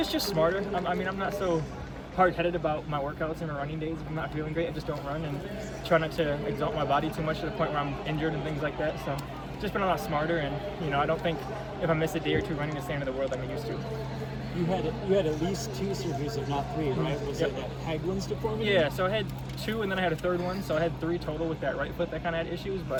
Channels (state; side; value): identical; both; correlation 1.00